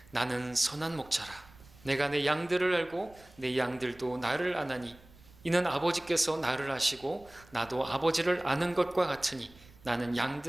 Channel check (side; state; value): right; noise; rumble, 25 dB below the sound